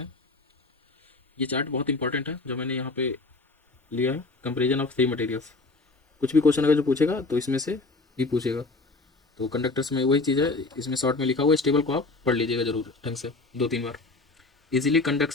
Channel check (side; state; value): right; quieter; 3.4 dB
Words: हैं। ये चार्ट बहुत इंपॉर्टेंट है जो मैंने यहाँ पे लिया है, कंपेरिजन ऑफ थ्री मटेरियल्स। कुछ भी क्वेश्चन अगर जो पूछेगा तो इसमें से ही पूछेगा। तो कंडक्टर्स में वही चीज़ है, इसमें शॉर्ट में लिखा हुआ है, स्टेबल को आप पढ़ लीजिएगा जरूर ढंग से 2-3 बार। Easily